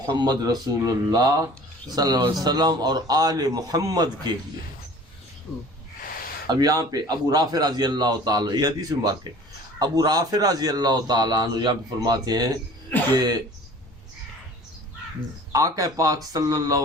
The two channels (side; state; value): both; normal; correlation 0.46